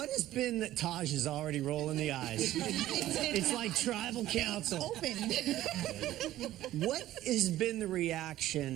has been that Taj is already rolling the eyes? It's like tribal council. Open. What has been the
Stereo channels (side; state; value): left; quieter; 14.3 dB